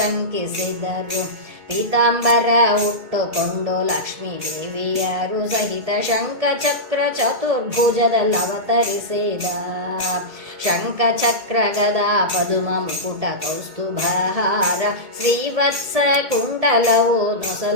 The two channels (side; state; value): left; late; 1.7 ms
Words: ಪೀತಾಂಬರ ಉಟ್ಟುಕೊಂಡು ಲಕ್ಷ್ಮೀ ದೇವಿಯರು ಸಹಿತ ಶಂಖ ಚಕ್ರ ಚತುರ್ಭುಜದಲ್ಲಿ ಅವತರಿಸಿದ. ಶಂಖ ಚಕ್ರ ಗದಾ ಪದುಮ ಮುಕುಟ ಕೌಸ್ತುಭಹಾರ ಶ್ರೀವತ್ಸ ಕುಂಡಲವು